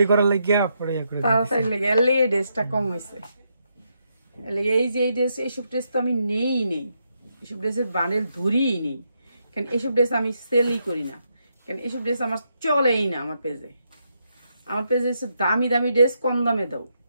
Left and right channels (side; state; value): both; inverted; correlation -0.80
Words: করার লাগিয়া পরে ইয়া করে দিছে, তাড়াতাড়ি লেগে এর লেগে ড্রেসটা কম হয়েছে। এই যে এই ড্রেস, এইসব ড্রেস তো আমি নেই, এইসব ড্রেসের বান্ডেল ধরিই নেই, কারণ এইসব ড্রেস আমি সেলই করি না, কারণ এইসব ড্রেস আমার চলেই না। আমার পেজে দামি দামি ড্রেস কম দামে দাও।